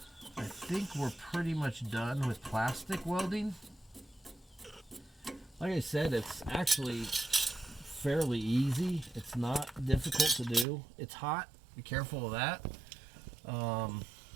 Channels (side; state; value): left; drops out; at 10.7 s